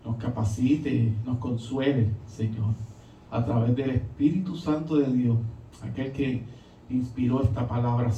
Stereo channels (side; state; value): both; identical; correlation 1.00